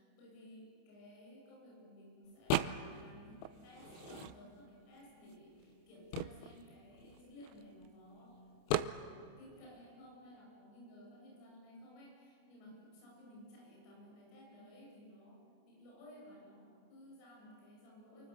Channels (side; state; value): right; late; 29 ms